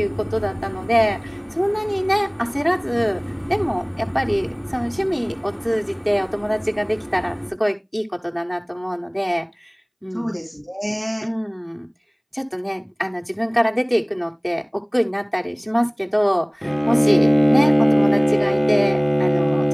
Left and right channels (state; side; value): identical; both; correlation 1.00